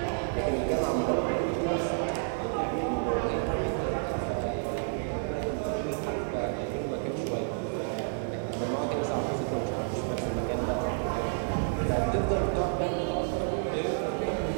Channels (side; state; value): left; silent; 58 dB below the other